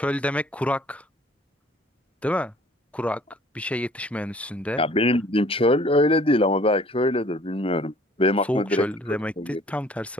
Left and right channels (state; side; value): normal; both; correlation 0.54